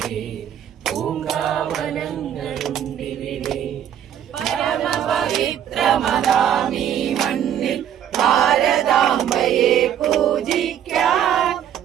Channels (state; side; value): quieter; left; 9.9 dB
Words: പൂങ്കാവനങ്ങളുണ്ടിവിടെ. പരമപവിത്രമതാമീ മണ്ണിൽ ഭാരതാംബയെ പൂജിക്കാൻ